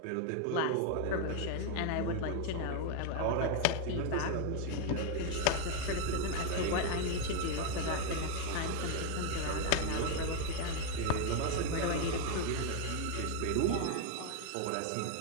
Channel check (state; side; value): different; both; correlation 0.01